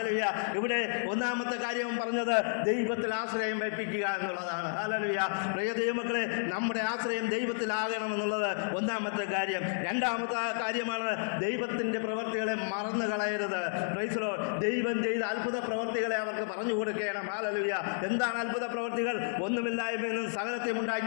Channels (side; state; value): right; silent; 57 dB below the other